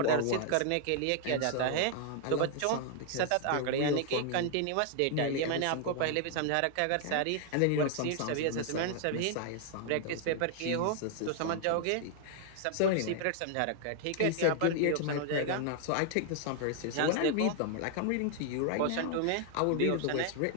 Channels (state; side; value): different; both; correlation 0.00